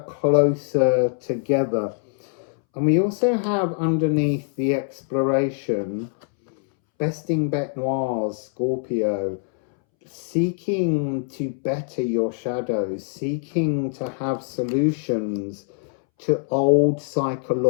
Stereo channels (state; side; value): silent; right; 63 dB below the other